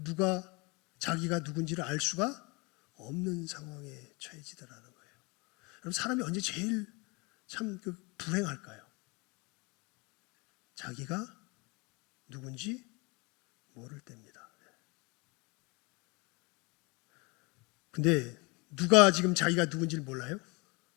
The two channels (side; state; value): right; quieter; 27.8 dB